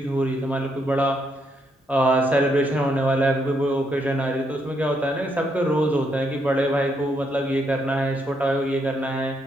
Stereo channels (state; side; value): normal; both; correlation 0.76